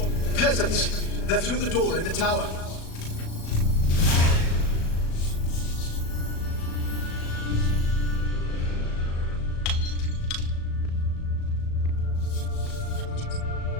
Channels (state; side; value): late; right; 37 ms